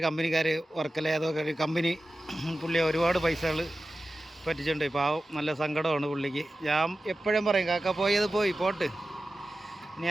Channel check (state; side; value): normal; both; correlation 0.94